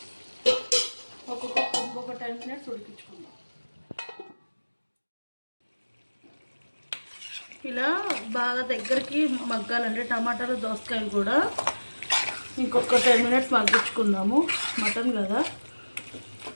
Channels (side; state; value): both; inverted; correlation -1.00